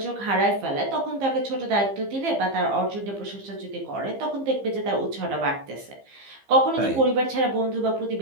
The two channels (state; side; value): late; left; 15 ms